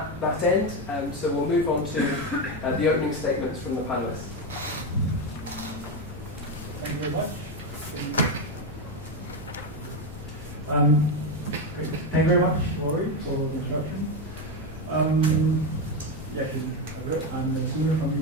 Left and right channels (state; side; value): normal; both; correlation 0.11